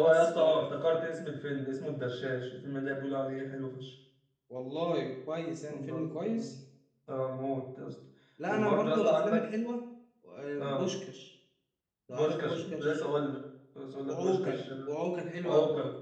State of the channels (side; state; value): both; identical; correlation 1.00